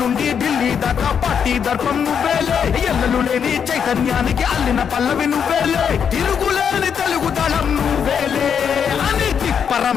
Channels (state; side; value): quieter; right; 7.4 dB